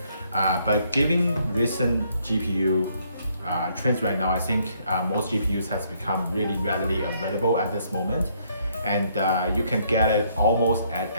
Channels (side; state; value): both; inverted; correlation -0.69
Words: But given recent GPU trends right now, I think most GPUs has become really readily available at this moment. And you can get it almost at